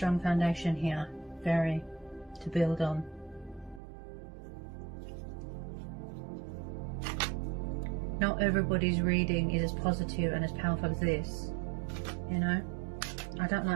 foundation here. Very, to build on. Not everybody's reading is as positive and as powerful as this, you know. I don't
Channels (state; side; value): drops out; left; at 3.8 s